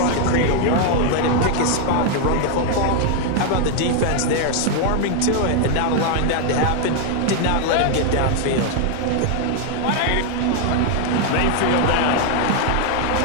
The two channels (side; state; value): both; different; correlation 0.00